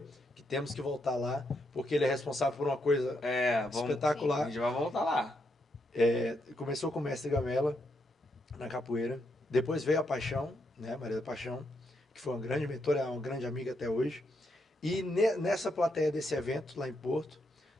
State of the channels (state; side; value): normal; both; correlation 0.79